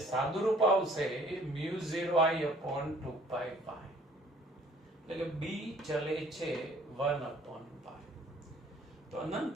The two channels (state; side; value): normal; both; correlation 0.56